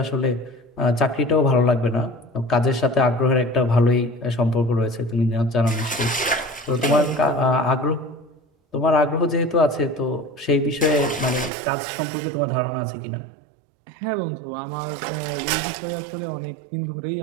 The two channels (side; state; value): left; drops out; at 11.5 s